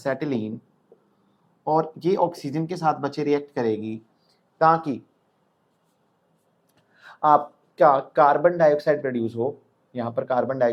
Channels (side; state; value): both; identical; correlation 1.00